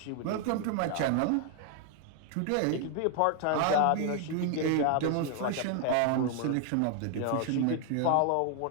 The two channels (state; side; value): different; both; correlation 0.00